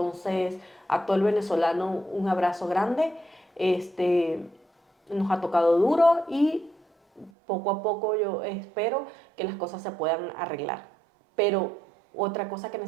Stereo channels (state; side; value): drops out; left; at 7.3 s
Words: a todo el venezolano un abrazo grande. Nos ha tocado duro y poco a poco yo espero que las cosas se puedan arreglar. Pero otra cosa que